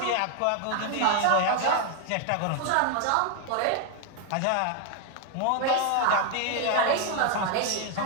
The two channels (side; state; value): both; different; correlation 0.00